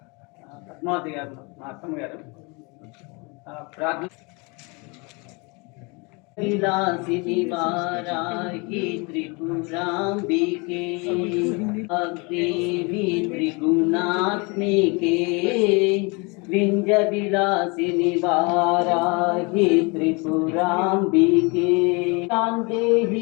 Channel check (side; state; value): right; quieter; 29.6 dB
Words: పద్మావతి గారు మా అత్తమ్మ గారు ప్రార్థన విలాసిని వారాహి త్రిపురాంబికే దేవి త్రిగుణాత్మికే వింజ విలాసిని వారాహి త్రిపురాంబికే దేహి